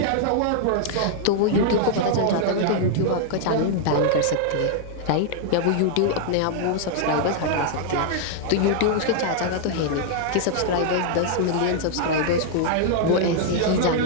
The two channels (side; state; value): both; different; correlation -0.01